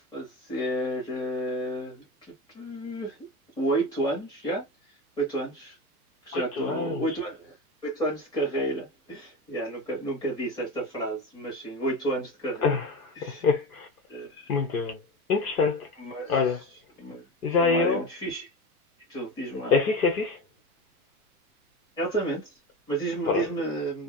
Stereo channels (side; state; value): both; normal; correlation 0.25